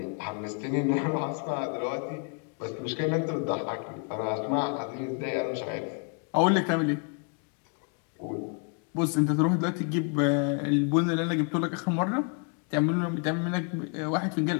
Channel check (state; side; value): quieter; right; 39.6 dB